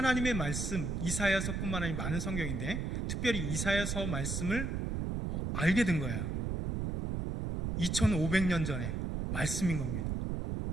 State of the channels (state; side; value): noise; right; rumble, 1 dB below the sound